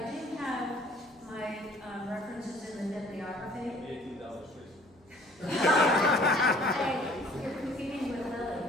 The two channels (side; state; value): right; noise; hum, 29 dB below the sound